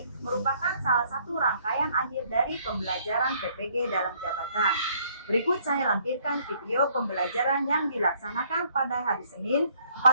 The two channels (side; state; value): both; inverted; correlation -0.64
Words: merupakan salah satu rangkaian akhir dari pembelajaran PPG dalam jabatan. Berikut saya lampirkan video pembelajaran yang dilaksanakan pada hari Senin